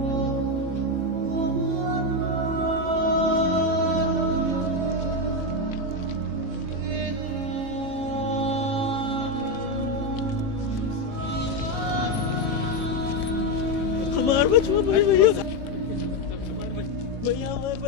हमार बचवा भाई भैया, भैया हमारे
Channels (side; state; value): left; late; 18 ms